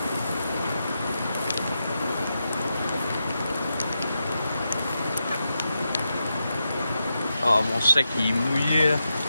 Ah, mon sac il est mouillé.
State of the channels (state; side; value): inverted; both; correlation -0.87